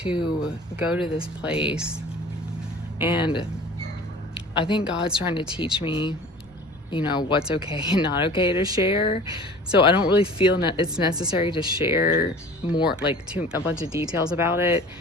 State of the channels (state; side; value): noise; left; rumble, 29 dB below the sound